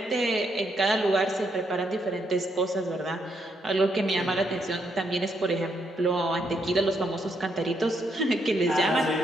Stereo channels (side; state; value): both; normal; correlation 0.76